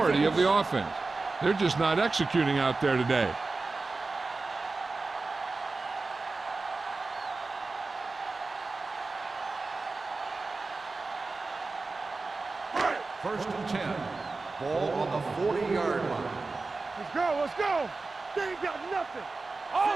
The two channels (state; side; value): quieter; left; 3.7 dB